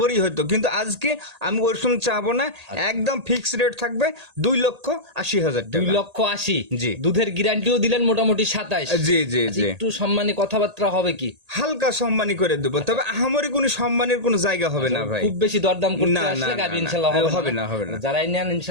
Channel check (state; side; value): late; left; 1.8 ms